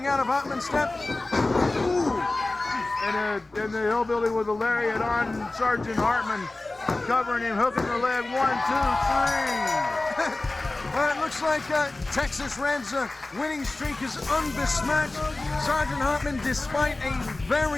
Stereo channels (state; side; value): quieter; right; 3.0 dB